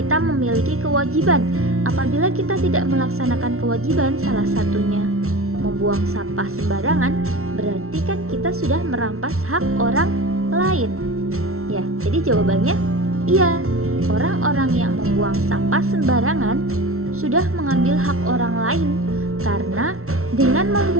memiliki kewajiban. Apabila kita tidak melaksanakan kewajiban, salah satunya membuang sampah sembarangan, berarti kan kita sudah merampas hak orang lain. Ya, jadi jawabannya iya. Orang-orang yang membuang sampah sembarangan sudah mengambil hak orang lain karena dengan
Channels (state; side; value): late; left; 0.63 ms